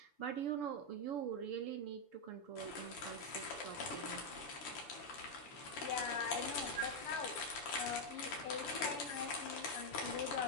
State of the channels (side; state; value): right; late; 6.9 ms